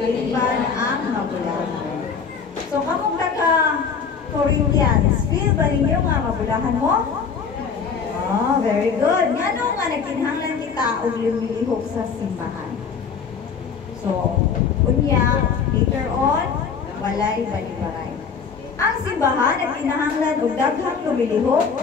ang mabulahan. So, kamong taga Corinthians, feel ba ninyo nga mabulahan mo? Oh, very good. Nga nga nagkinhanglan kita og lumilihok sa simbahan. So, unya, later on, walay balibaray. Ang simbahan ay kinahanglan og daghang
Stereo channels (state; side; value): quieter; right; 6.1 dB